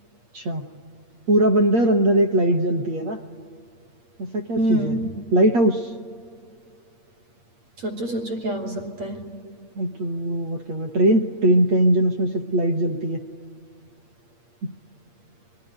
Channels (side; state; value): left; late; 8.6 ms